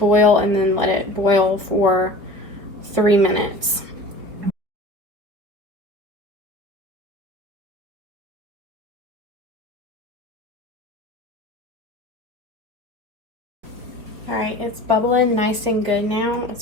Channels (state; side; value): late; left; 4.8 ms